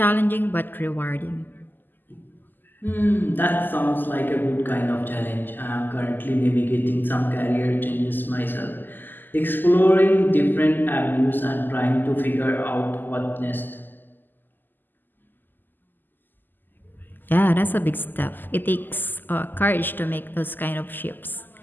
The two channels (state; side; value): late; right; 0.090 ms